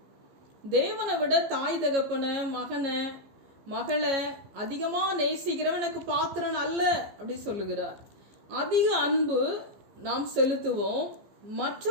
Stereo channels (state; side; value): late; left; 15 ms